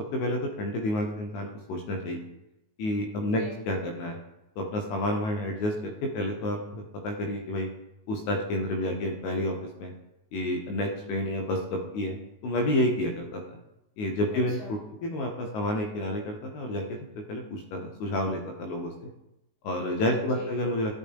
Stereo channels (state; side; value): late; right; 19 ms